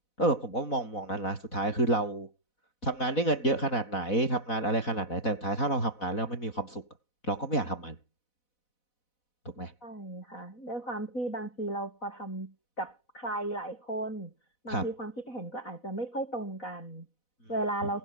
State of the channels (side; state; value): right; late; 4.0 ms